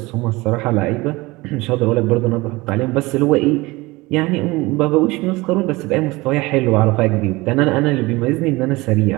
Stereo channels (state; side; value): quieter; left; 21.9 dB